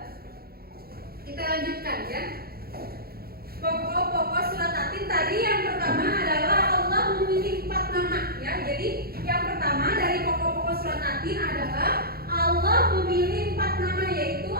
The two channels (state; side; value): late; left; 0.44 ms